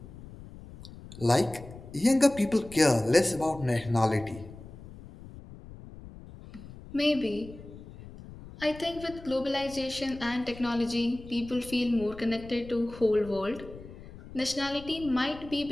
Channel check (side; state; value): left; noise; rumble, 16 dB below the sound